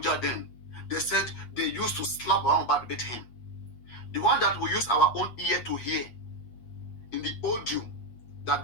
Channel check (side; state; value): right; late; 8.4 ms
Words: then, they said they used to slap Baba Mohbad with him. The one that we use our own ear to hear in the audio that